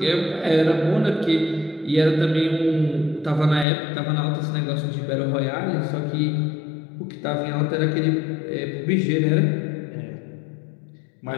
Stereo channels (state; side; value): drops out; right; at 3.7 s